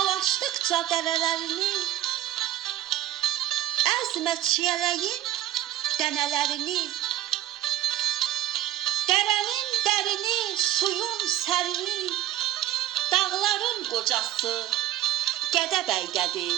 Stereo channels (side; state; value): left; quieter; 13.4 dB